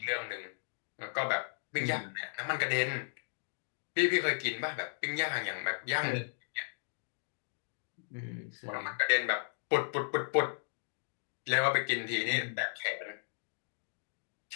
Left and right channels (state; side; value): silent; right; digital silence